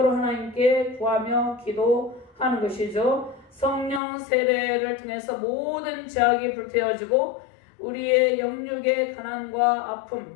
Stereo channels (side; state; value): right; drops out; at 4.0 s